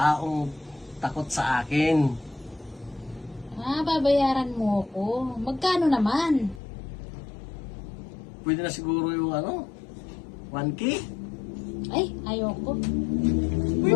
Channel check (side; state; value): right; drops out; at 6.6 s